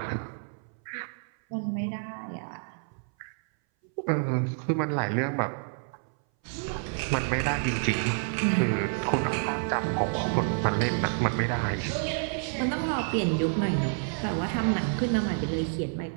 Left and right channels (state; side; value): silent; left; 59 dB below the other